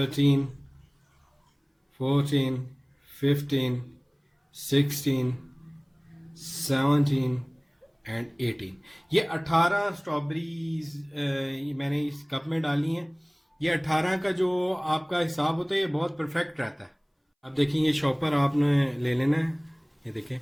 14 15 16 17 एंड 18। ये 18 स्ट्रॉबेरीज मैंने इस कप में डाली हैं। ये 18 का जो आपका हिसाब होता है ये बहुत परफेक्ट रहता है। अब देखिए, ये शॉपर आपने ले लेना है। ये देखें,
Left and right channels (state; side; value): identical; both; correlation 1.00